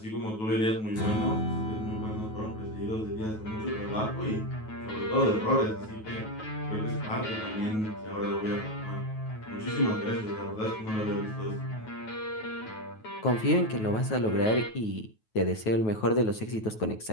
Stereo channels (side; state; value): right; late; 9.3 ms